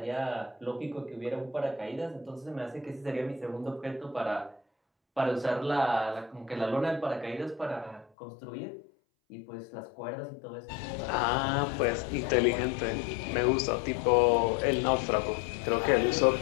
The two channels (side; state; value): right; drops out; at 8.1 s